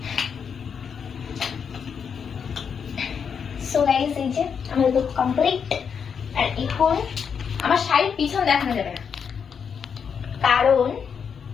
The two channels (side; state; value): right; quieter; 6.8 dB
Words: সো গাইস, এই যে আমাদের লুক কমপ্লিট। আর এখন আমার শাড়ির পিছন দেখানো যাবে না, কারণ